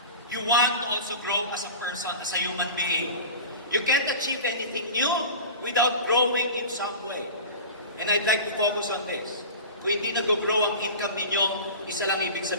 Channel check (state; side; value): inverted; both; correlation -0.34